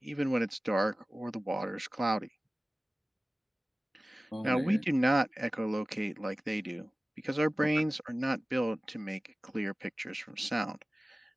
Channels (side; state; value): both; normal; correlation 0.97